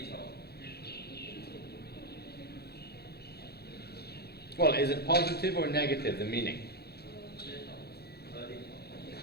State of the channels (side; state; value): right; late; 0.46 ms